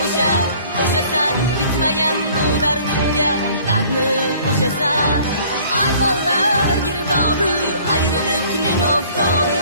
o'shasan, bitmagan bu dardimga dardni qo'shasan. Armonlar girdobi, ayriliqning oftobi,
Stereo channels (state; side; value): inverted; both; correlation -0.53